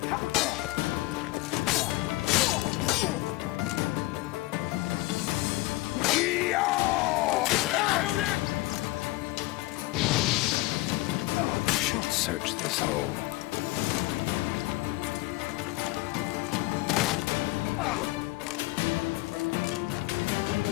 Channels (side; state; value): right; quieter; 20.6 dB